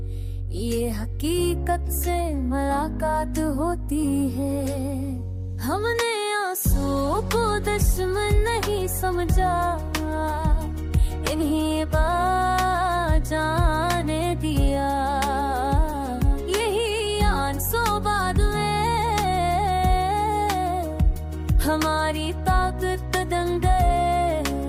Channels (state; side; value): identical; both; correlation 1.00